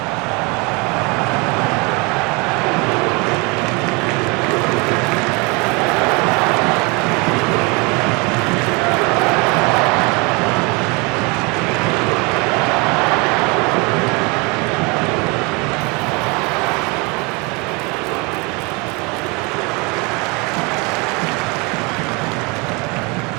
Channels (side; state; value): left; quieter; 28.5 dB